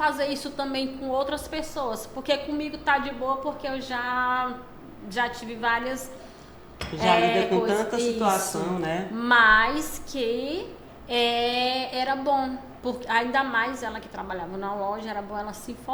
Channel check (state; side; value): identical; both; correlation 1.00